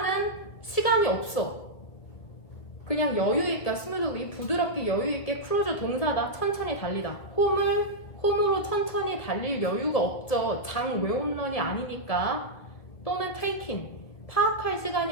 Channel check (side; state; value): right; late; 2.2 ms